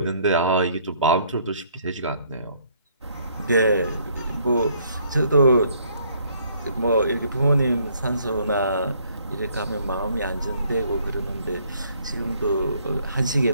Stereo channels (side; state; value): both; inverted; correlation -0.65